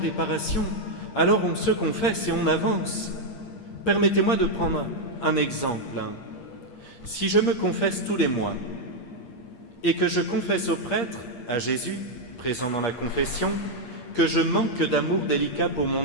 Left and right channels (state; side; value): late; right; 8.5 ms